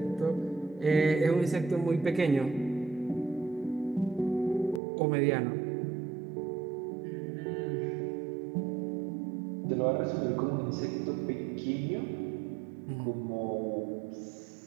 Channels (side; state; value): left; drops out; at 4.8 s